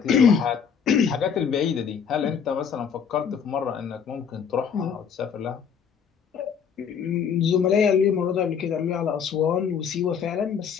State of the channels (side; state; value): right; quieter; 7.1 dB